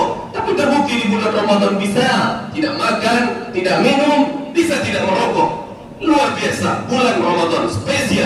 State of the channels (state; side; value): identical; both; correlation 1.00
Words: Tapi terbukti di bulan Ramadan bisa tidak makan, tidak minum, bisa tidak merokok. Luar biasa, bulan Ramadan